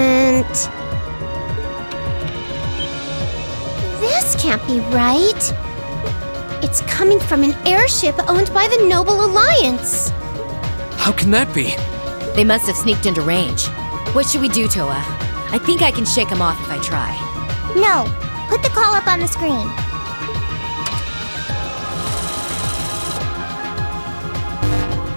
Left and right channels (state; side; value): inverted; both; correlation -1.00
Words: This can't be right. It's coming from an airship owned by the Noble Alliance. How can that be? They must have sneaked into range. What should we do, Toa? I think I can shake them off if I try. No, put the call up on the screen.